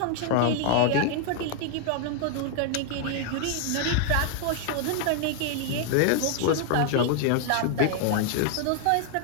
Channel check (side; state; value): both; different; correlation 0.00